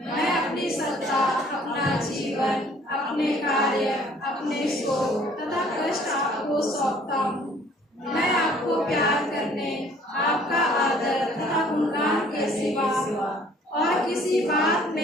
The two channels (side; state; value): both; normal; correlation 0.57